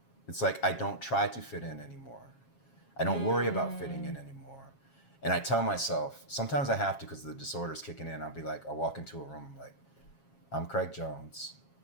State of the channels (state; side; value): late; right; 7.4 ms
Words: It's like I don't try to fit in anymore. I don't worry about fitting in anymore. And I tell myself, sometimes I have to because the disorder's kicking in. I'll walk into a room, I'm Craig Jones.